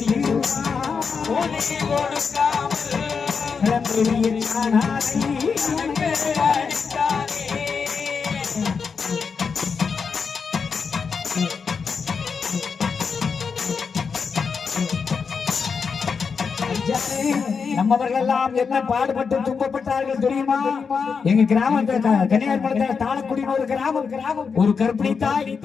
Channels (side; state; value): right; quieter; 5.6 dB